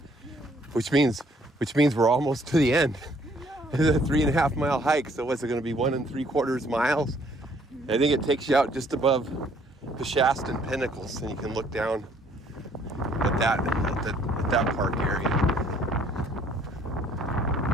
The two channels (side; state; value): both; normal; correlation 0.63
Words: which means we're almost to the end. It's a 3.5 mile hike. So what's it going to be, 1 3/4 miles? I think it takes you out just above the Shasta Pinnacles, and you can look down at that park area.